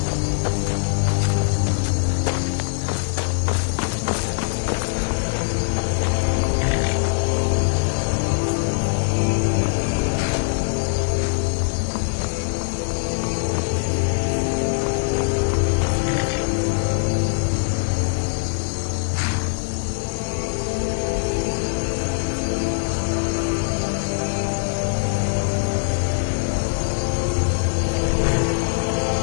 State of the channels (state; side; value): silent; right; 64 dB below the other